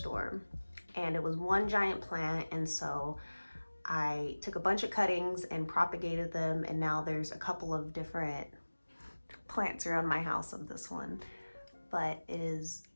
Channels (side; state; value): both; inverted; correlation -1.00